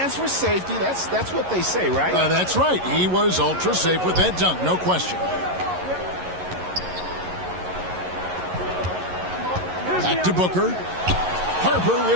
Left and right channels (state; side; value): late; left; 11 ms